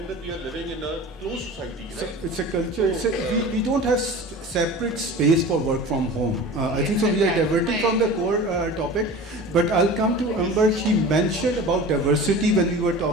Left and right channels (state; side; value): normal; both; correlation 0.37